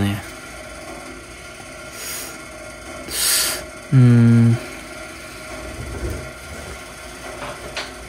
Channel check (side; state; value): both; identical; correlation 1.00